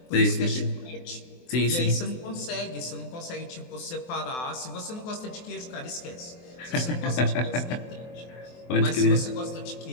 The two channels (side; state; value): right; late; 23 ms